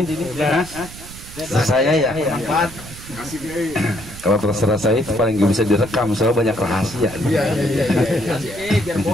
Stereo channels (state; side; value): noise; right; rumble, 15 dB below the sound